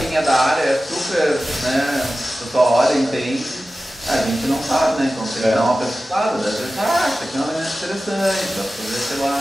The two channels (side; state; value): both; normal; correlation 0.95